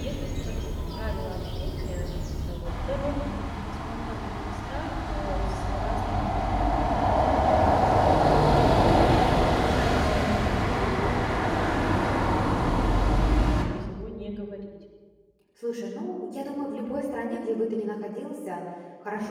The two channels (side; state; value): both; identical; correlation 1.00